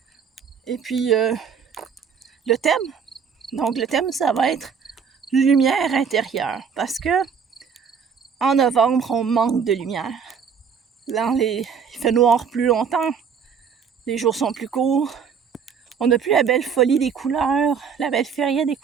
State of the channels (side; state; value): left; quieter; 6.6 dB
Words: et puis le thème. Donc, le thème, ça va être lumière intérieure, parce que en novembre, on manque de lumière. Il fait noir plus longtemps, les jours sont plus courts, on n'a plus la belle folie des couleurs, la belle feria des